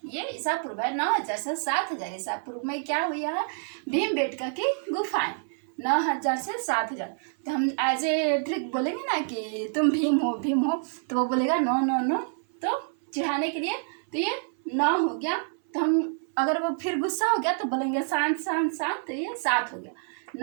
ये ईसा पूर्व है। 9000 से 7000 ईसा पूर्व में क्या हुआ है? भीमबेटका की गुफाएं। 9000 से 7000। तो हम एज ए ट्रिक बोलेंगे ना कि तुम भीम हो, तो वो बोलेगा नो नो नो, तो चिढ़ाने के लिए। तो ये 9 हो गया। तो हम अगर वो फिर गुस्सा हो गया तो बोलेंगे शांत शांत शांत, तो ये 7 हो गया।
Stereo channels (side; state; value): left; silent; 60 dB below the other